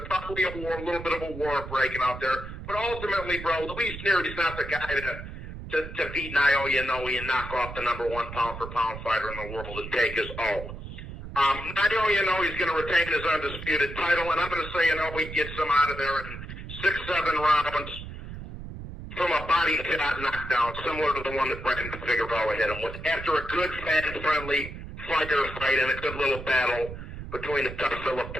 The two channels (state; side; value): noise; right; rumble, 10 dB below the sound